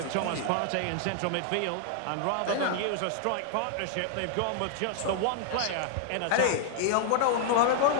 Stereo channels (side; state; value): both; different; correlation 0.00